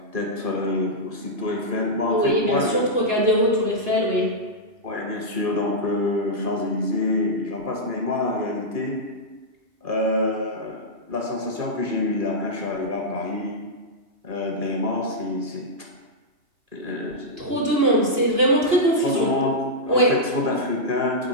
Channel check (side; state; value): left; late; 2.9 ms